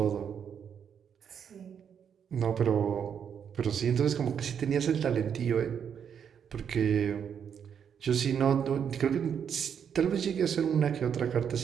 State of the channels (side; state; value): left; quieter; 7.8 dB